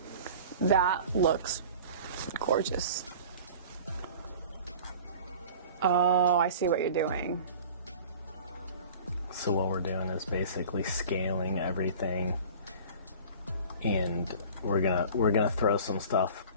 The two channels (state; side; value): inverted; both; correlation -0.41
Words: that looks gorgeous. Oh, I see what you're doing. So what we're doing is basically scaling everything, and we're gonna throw some stuff